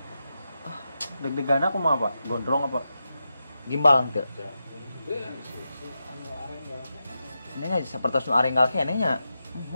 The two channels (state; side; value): inverted; both; correlation -0.89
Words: Deg-degan aku mah apa? Gondrong apa? gimbal teu ini nya sapertos nu arenggal keneh nya